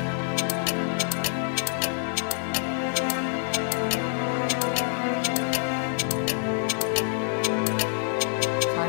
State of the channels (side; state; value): right; silent; 61 dB below the other